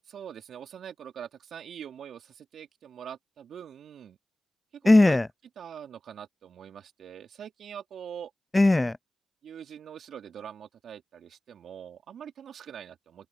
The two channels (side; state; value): both; normal; correlation 0.98